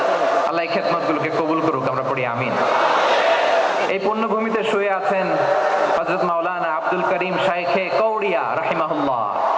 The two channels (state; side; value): identical; both; correlation 1.00